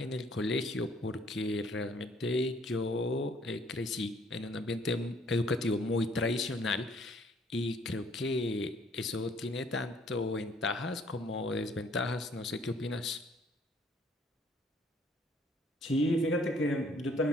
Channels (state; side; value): normal; both; correlation 0.62